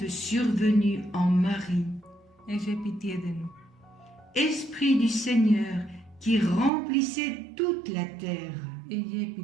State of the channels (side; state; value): left; drops out; at 6.7 s